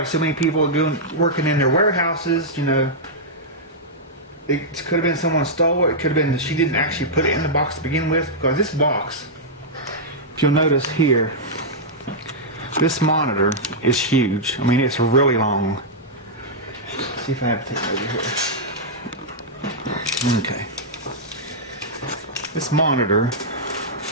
so many people working in their warehouses, you know. It could have been someone stole it. It could have been that she didn't actually put it in the box to begin with, because this box, if you'll notice here, this monitor is huge. I mean, it's really long. Let's see if I have to take it over here. Okay. This monitor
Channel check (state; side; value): normal; both; correlation -0.08